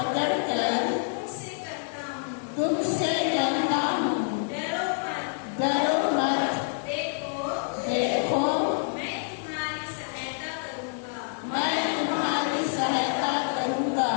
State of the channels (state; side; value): silent; right; digital silence